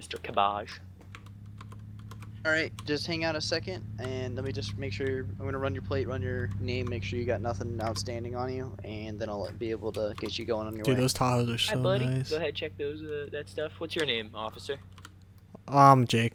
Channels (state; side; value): identical; both; correlation 1.00